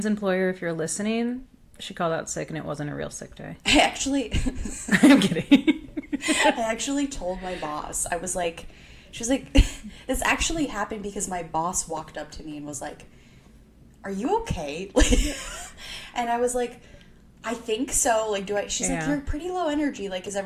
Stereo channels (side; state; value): both; identical; correlation 1.00